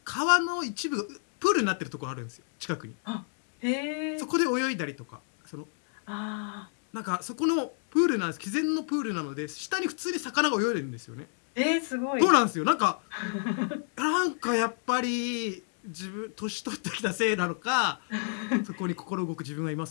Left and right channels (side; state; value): right; silent; 58 dB below the other